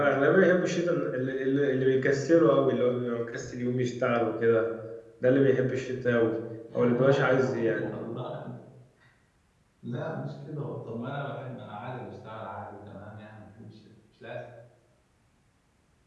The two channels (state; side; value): identical; both; correlation 1.00